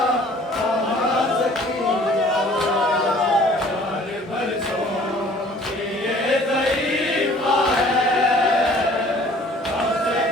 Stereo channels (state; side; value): normal; both; correlation 0.53